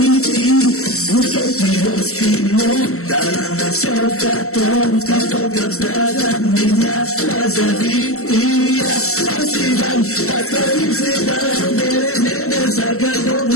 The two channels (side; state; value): right; late; 0.63 ms